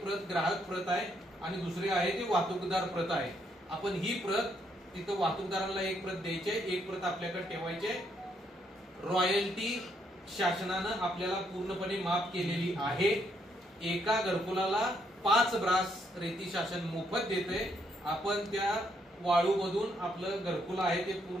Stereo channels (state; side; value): normal; both; correlation 0.74